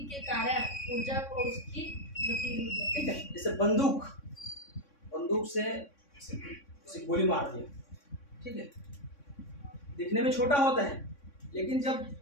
के कारण ऊर्जा को उसकी गतिज ऊर्जा। ठीक है, जैसे बंदूक से उसे गोली मार दिया, ठीक है, दिखने में छोटा होता है, लेकिन जब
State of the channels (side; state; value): right; late; 3.6 ms